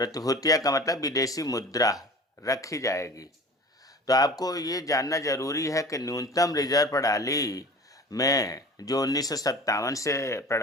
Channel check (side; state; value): both; normal; correlation 0.40